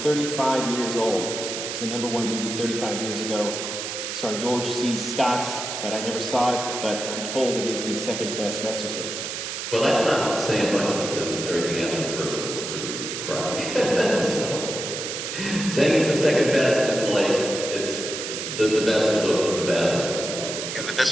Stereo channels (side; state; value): right; noise; hiss, 5 dB below the sound